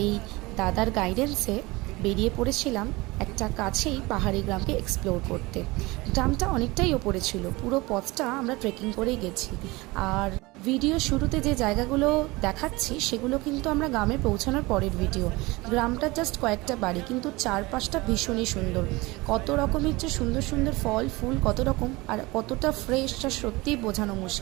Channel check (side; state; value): left; quieter; 22.5 dB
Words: দাদার গাইডেন্সে বেরিয়ে পড়েছিলাম একটা কাছেই পাহাড়ি গ্রামকে এক্সপ্লোর করতে। গ্রামটা অনেকটাই ওপরে ছিল, পুরো পথটা আমরা ট্রেকিং করেই গেছি। আর ভিডিও শুরুতে যে জায়গাগুলো দেখাচ্ছি সেগুলো কিন্তু আমরা গ্রামে পৌঁছানোর পরের ভিডিও। গ্রামটা জাস্ট কয়েকটা বাড়ি, কিন্তু চারপাশটা ভীষণই সুন্দর। কত রকমের যে সুন্দর সুন্দর ফল ফুল, কত রকম, আর কতটা ফ্রেশ তা সত্যিই বোঝানো